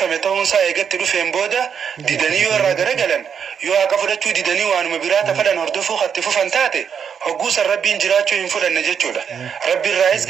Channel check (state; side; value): quieter; left; 7.3 dB